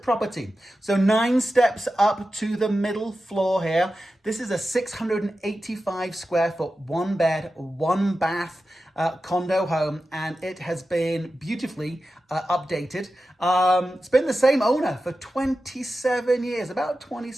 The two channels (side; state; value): both; normal; correlation 0.92